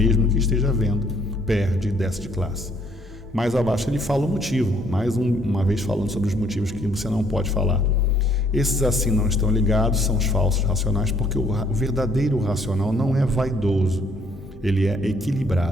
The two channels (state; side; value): normal; both; correlation 0.64